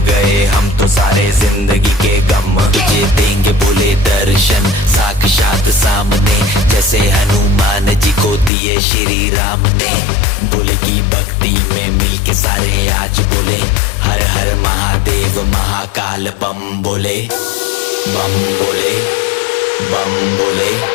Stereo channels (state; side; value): drops out; right; at 8.5 s